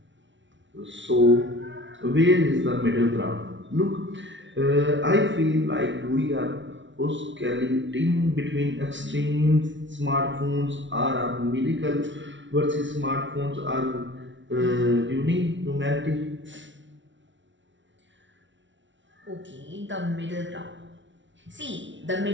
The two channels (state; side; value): late; left; 0.55 ms